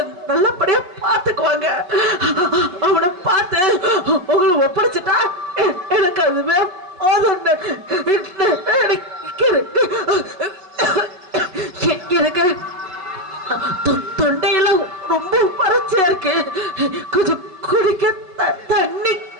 நல்லபடியா பார்த்துக்குவாங்க. அவனை பார்த்து உங்களை ஒப்படைச்சிட்டா எனக்கு அதுவே போதும். எனக்கு தொண்டையெல்லாம் ரொம்ப வறட்சியா இருக்கு. கொஞ்சம் குடிக்க தண்ணி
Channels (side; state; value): left; late; 5.3 ms